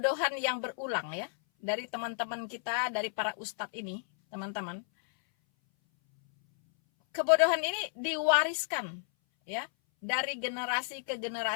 yang berulang ya dari teman-teman kita, dari para ustadz ini, teman-teman. Kebodohan ini diwariskan ya dari generasi ke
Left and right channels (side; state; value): right; silent; 56 dB below the other